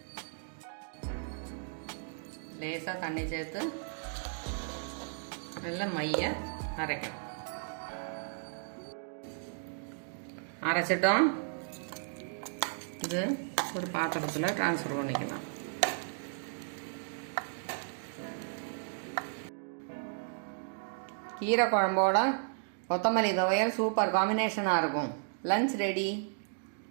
லேசாக தண்ணி சேர்த்து நல்லா மைய அரைக்கணும். அரைச்சிட்டோம். இது ஒரு பாத்திரத்தில் ட்ரான்ஸ்ஃபர் பண்ணிக்கலாம். கீரை குழம்போட கொத்தமல்லி துவையல் சூப்பர் காம்பினேஷனாக இருக்கும். Lunch ready.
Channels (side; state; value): left; silent; digital silence